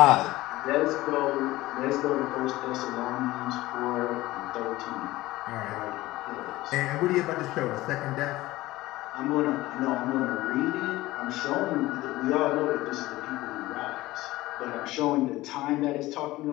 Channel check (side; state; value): right; quieter; 17.9 dB